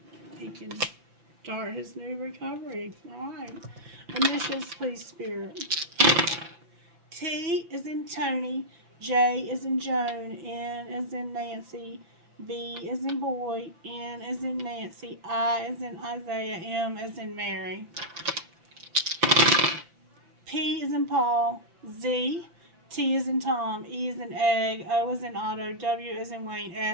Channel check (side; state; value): left; late; 5.9 ms